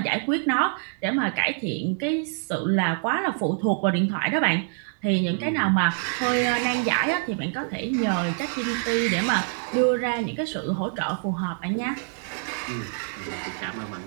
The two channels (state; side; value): silent; left; 61 dB below the other